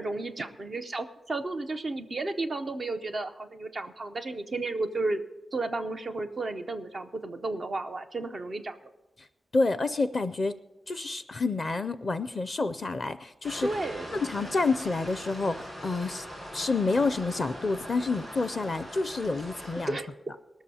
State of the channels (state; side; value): normal; both; correlation 0.88